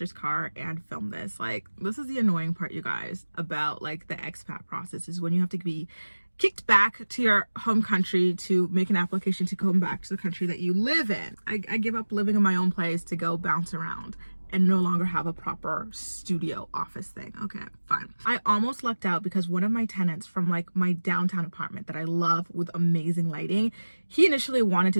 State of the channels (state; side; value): inverted; both; correlation -1.00